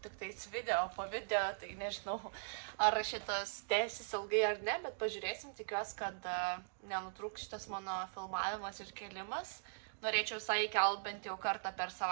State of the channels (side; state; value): left; silent; digital silence